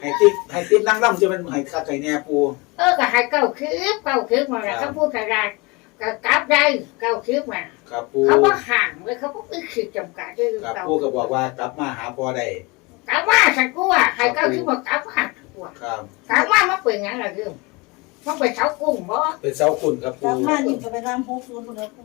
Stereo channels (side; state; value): right; quieter; 26.2 dB